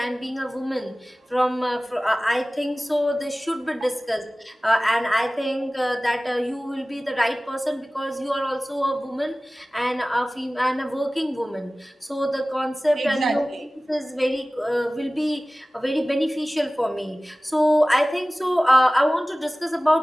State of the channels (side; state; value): both; normal; correlation 0.98